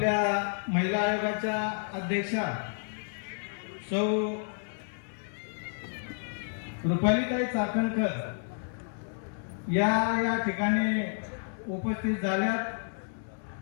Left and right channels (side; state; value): right; silent; 57 dB below the other